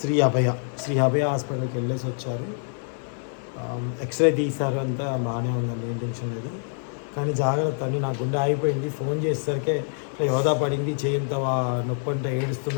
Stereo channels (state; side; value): silent; right; digital silence